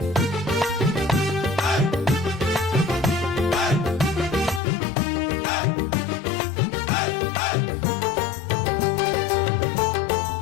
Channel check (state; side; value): drops out; right; at 4.6 s